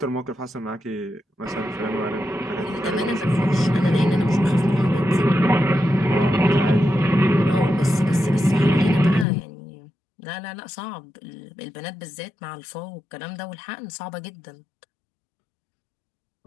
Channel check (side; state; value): right; drops out; at 9.2 s